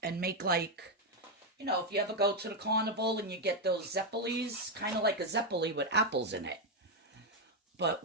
and make like, you know, if you ever go to the carnival and you get those zeppelis, kind of like a zeppeli with apples in it. But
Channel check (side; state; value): both; normal; correlation 0.04